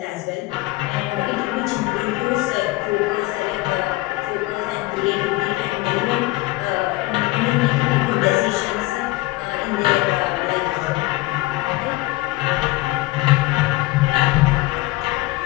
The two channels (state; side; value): quieter; right; 19.9 dB